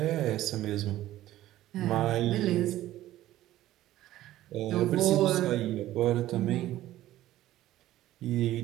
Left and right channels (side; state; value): left; quieter; 14.5 dB